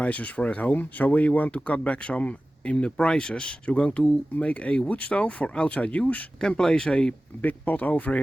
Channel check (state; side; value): normal; both; correlation 0.96